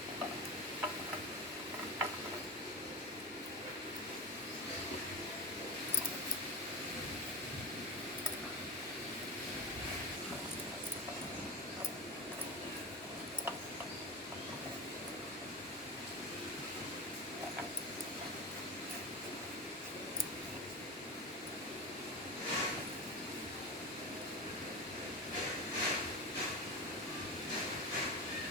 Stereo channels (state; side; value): normal; both; correlation 0.23